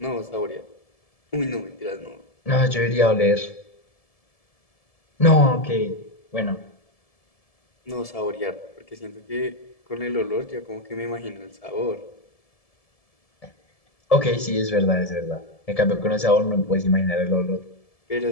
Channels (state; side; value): late; right; 1.7 ms